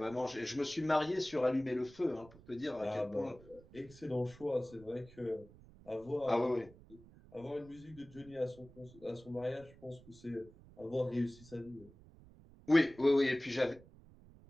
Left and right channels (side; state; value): right; noise; rumble, 22 dB below the sound